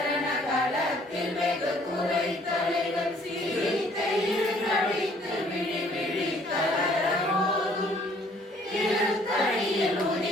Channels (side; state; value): both; normal; correlation 0.60